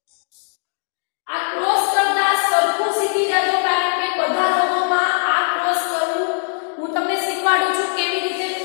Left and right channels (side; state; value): right; silent; digital silence